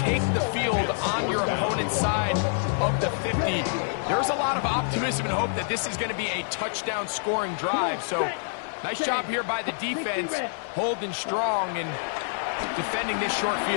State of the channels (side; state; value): right; silent; 55 dB below the other